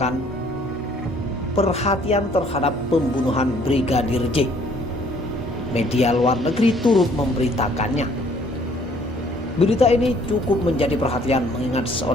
perhatian terhadap pembunuhan Brigadir J, media luar negeri turut memberitakannya. Berita ini cukup menjadi perhatian mengingat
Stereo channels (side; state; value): both; normal; correlation 0.60